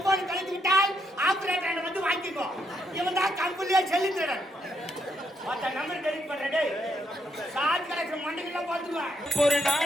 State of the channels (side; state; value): both; normal; correlation 0.77